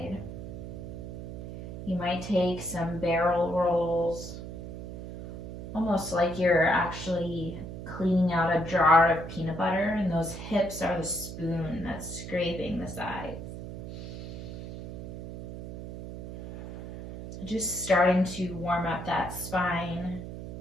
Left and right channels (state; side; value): noise; right; hum, 10 dB below the sound